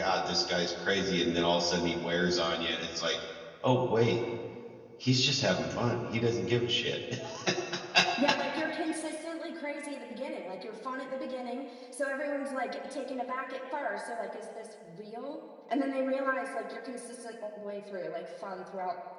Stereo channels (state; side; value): identical; both; correlation 1.00